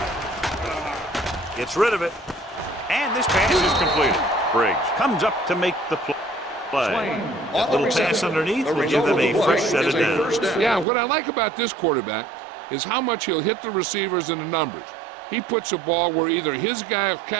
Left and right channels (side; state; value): left; drops out; at 10.9 s